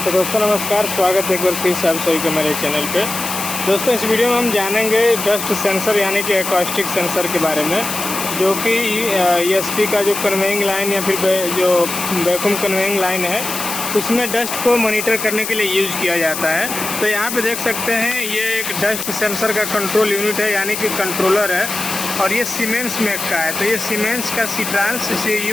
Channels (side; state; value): left; noise; hiss, 5 dB below the sound